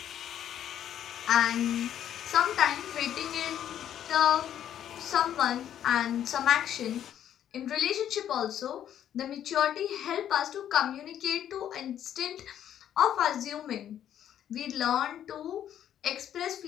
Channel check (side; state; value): right; quieter; 10.4 dB